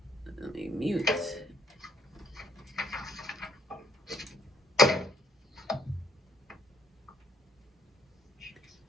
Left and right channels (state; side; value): normal; both; correlation 0.66